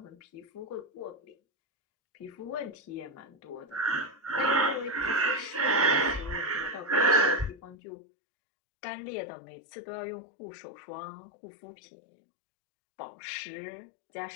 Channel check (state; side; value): drops out; right; at 7.8 s